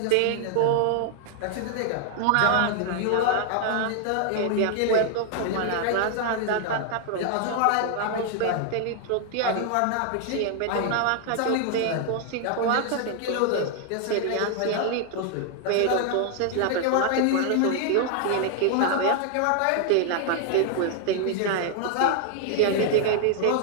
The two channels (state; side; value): different; both; correlation 0.00